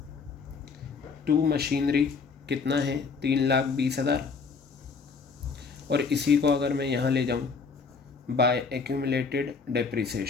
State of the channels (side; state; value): right; quieter; 5.0 dB